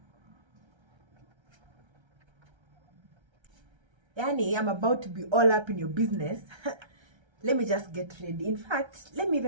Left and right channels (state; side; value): late; left; 1.3 ms